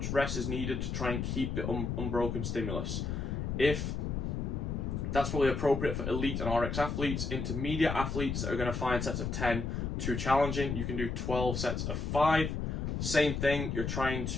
rest as needed to try and keep the unbroken stimulus. If that's probably appropriate for elite and RX athletes, intermediate athletes that are going to find sets of 10 too challenging, you can do 12 sets of 5. Same thing, you're trying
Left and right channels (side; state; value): left; noise; rumble, 2 dB below the sound